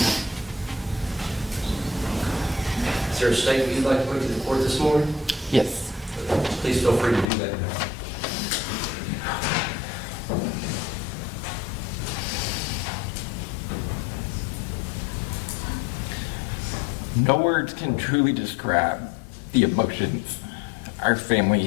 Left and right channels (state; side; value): drops out; right; at 7.3 s